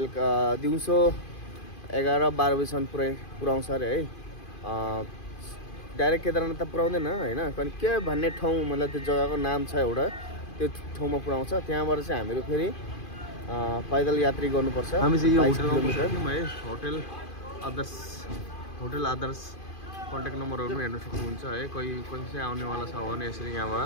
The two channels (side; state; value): right; late; 2.5 ms